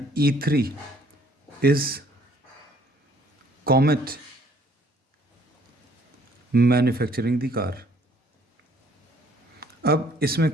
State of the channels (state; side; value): normal; both; correlation 0.61